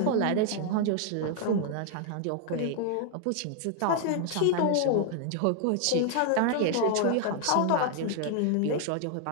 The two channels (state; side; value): different; both; correlation 0.00